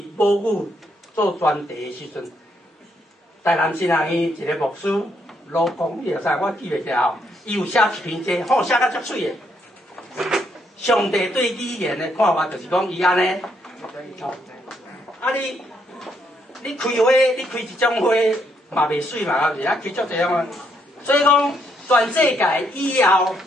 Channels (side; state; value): both; normal; correlation 0.74